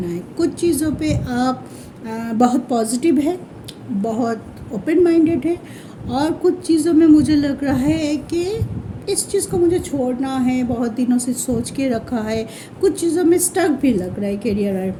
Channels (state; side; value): identical; both; correlation 1.00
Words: है। कुछ चीज़ों पे आप बहुत पॉजिटिव है, बहुत ओपन माइंडेड है, और कुछ चीज़ों में मुझे लग रहा है कि इस चीज़ को मुझे छोड़ना है, बहुत दिनों से सोच के रखा है। कुछ चीज़ों में स्टक भी लग रहा है कैरियर।